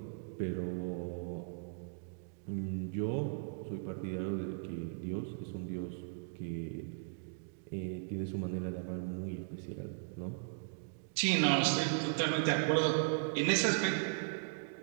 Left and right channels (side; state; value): left; silent; digital silence